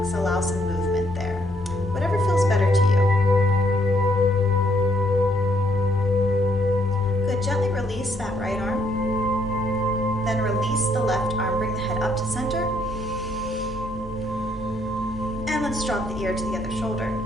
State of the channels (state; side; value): normal; both; correlation 0.70